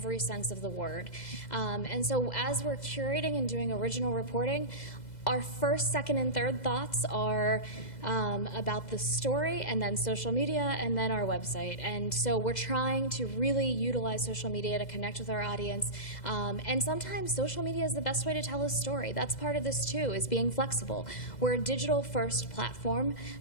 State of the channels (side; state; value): right; late; 2.0 ms